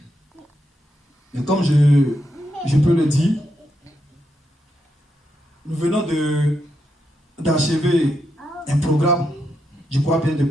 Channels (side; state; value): both; normal; correlation 0.82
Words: Mais comme je peux le dire, nous venons d'achever un programme, je crois bien